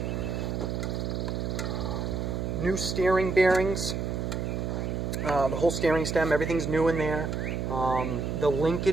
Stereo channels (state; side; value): noise; right; hum, 2 dB below the sound